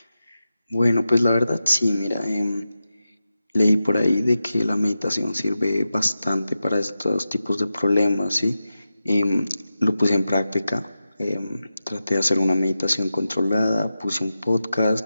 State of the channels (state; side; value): inverted; both; correlation -0.92